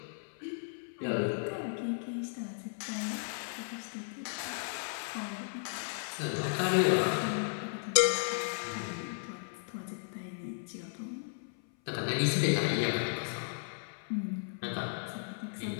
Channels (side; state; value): right; silent; 54 dB below the other